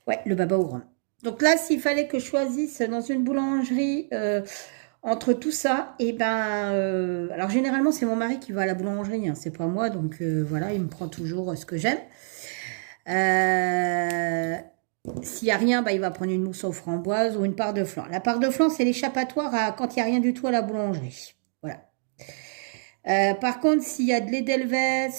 Ouais, le baba au rhum. Donc là, s'il fallait que je choisisse dans une boulangerie entre tout ça, et ben... alors généralement, c'est mon mari qui va à la boulangerie, hein, c'est pas moi. Donc voilà, il me prend toujours ce que j'aime. S'il n'y a rien, bah, il va prendre une mousse aux framboises ou une part de flan. La part de flan, c'est l'échappatoire quand il n'y a rien du tout à la boulangerie. Voilà. Par contre, s'il y a de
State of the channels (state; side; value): silent; left; digital silence